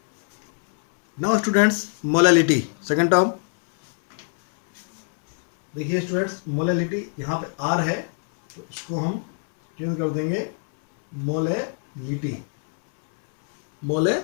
Now students, molality, second term. देखिए students, molality यहाँ पे R है, तो इसको हम चेंज कर देंगे molality.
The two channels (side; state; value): right; silent; 63 dB below the other